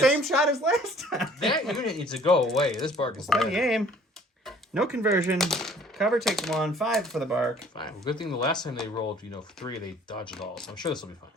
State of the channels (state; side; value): normal; both; correlation 0.54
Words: shot as last time. That unit needs to go away. This bark is Steady dead. aim. No conversion. Cover takes 1. 5 for the bark. Fine. Well, good thing the last time they rolled, 3, they dodged it all. So I'm sure this will be fine.